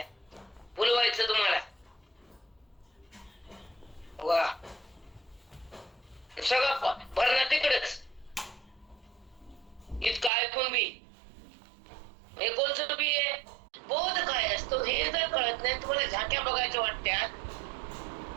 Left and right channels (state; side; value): drops out; left; at 10.3 s